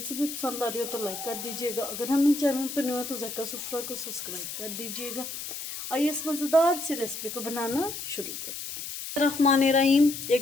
भी पसंद आ रही हो तो लाइक कर दीजिएगा। अगर हम चैनल पर न्यू हो तो ज़ायका सुफ़रा को सब्सक्राइब कर दीजिएगा। आइए इस मज़ेदार सी रेसिपी को बनाना शुरू करते हैं। रहमानिर्रहीम।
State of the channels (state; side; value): noise; left; hiss, 8 dB below the sound